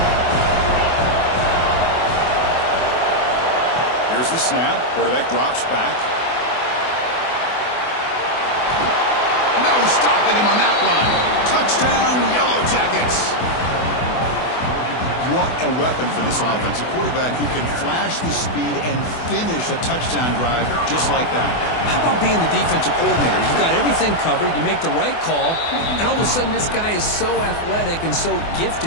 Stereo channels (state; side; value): late; right; 24 ms